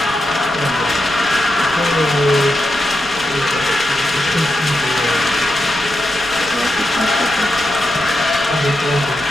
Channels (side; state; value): right; noise; rumble, 18 dB below the sound